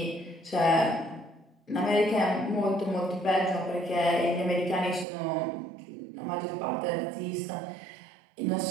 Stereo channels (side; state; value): left; drops out; at 5.1 s